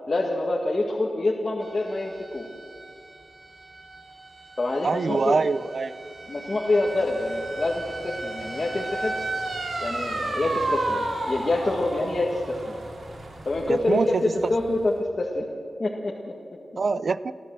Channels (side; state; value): both; normal; correlation 0.92